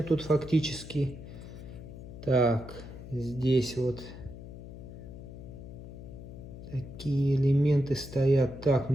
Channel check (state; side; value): noise; left; hum, 13 dB below the sound